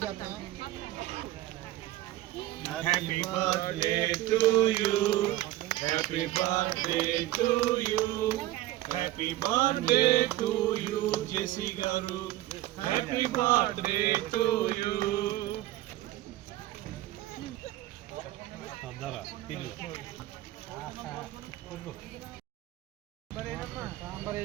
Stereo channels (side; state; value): left; quieter; 15.8 dB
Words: Happy birthday to you. Happy birthday to you. Happy birthday to you, Jesse Garu. Happy birthday to you. Sambar